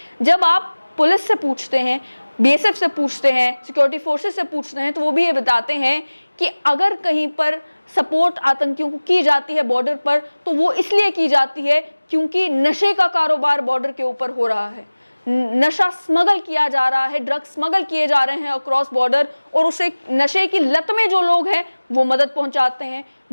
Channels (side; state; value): both; inverted; correlation -1.00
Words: जब आप पुलिस से पूछते हैं, बीएसएफ से पूछते हैं, सिक्योरिटी फोर्सेस से पूछते हैं, तो वो भी ये बताते हैं कि अगर कहीं पर सपोर्ट आतंकियों को की जाती है बॉर्डर पर, तो वो इसलिए की जाती है क्योंकि नशे का कारोबार बॉर्डर के ऊपर हो रहा है, नशा स्मगल किया जा रहा है, ड्रग्स स्मगल किए जा रहे हैं अक्रॉस बॉर्डर, और उसे नशे की लत में जो लोग हैं वो मदद पहुंचाते हैं,